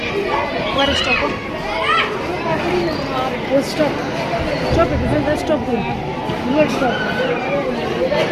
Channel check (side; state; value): both; identical; correlation 1.00